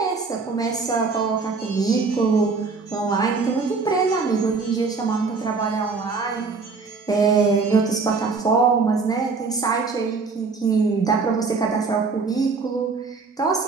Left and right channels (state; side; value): quieter; left; 4.5 dB